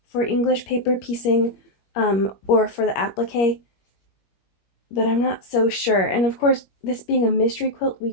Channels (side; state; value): right; late; 21 ms